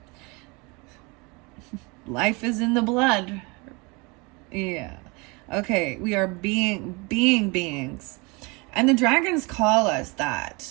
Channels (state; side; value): quieter; left; 27.7 dB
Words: Life is in the blood. Yeah. Okay, we are beings. And the dragons call us